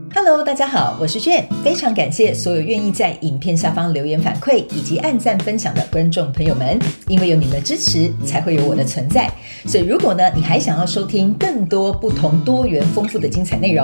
Hello， 大家好，我是Jane，非常感谢所有愿意在影片下方留言反馈以及按赞分享的观众朋友们，因为有你们的支持，才会有我的存在。所以如果呢，你还想要收听更多不同多元丰富的精彩内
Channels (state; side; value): inverted; both; correlation -1.00